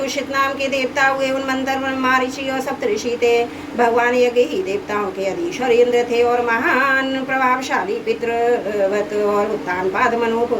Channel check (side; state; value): both; identical; correlation 1.00